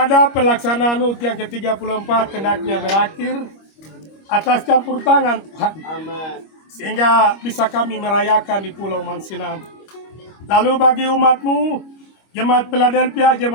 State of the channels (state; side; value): late; right; 25 ms